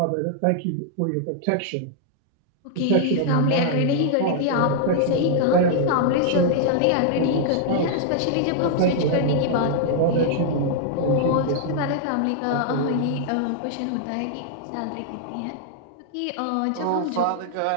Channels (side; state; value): both; different; correlation -0.01